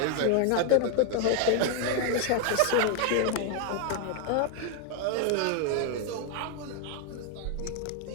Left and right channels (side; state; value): both; different; correlation 0.00